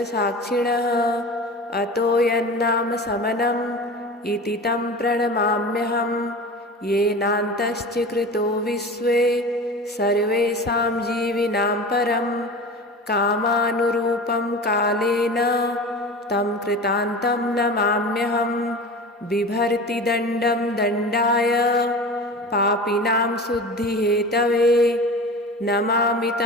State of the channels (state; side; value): normal; both; correlation 0.33